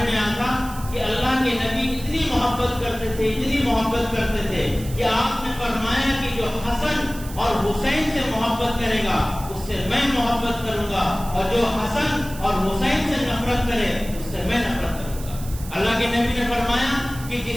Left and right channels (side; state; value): right; noise; hiss, 15 dB below the sound